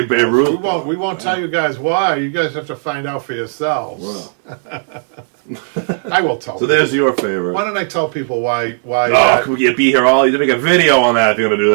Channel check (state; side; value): silent; left; digital silence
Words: Babe Ruth. We won't tell you guys why. You guys have to find out for yourselves. Wow. I will tell. So there's your favorite. Why don't I tell people why? Oh, you'd be here all. You'd make a video on that if you're gonna do